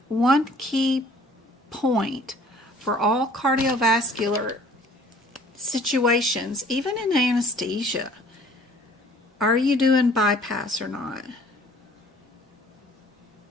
one key point for all cardiovascular situations, even in anesthesia, are you doing bypass or not?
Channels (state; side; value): normal; both; correlation 0.54